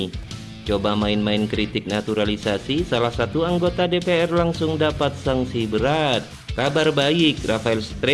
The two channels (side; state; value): both; identical; correlation 1.00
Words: Coba main-main kritik naturalisasi, salah satu anggota DPR langsung dapat sanksi berat. Kabar baik, Rafael